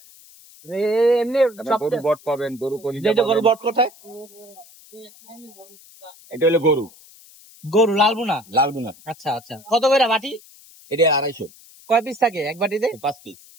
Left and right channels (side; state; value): left; noise; hiss, 23 dB below the sound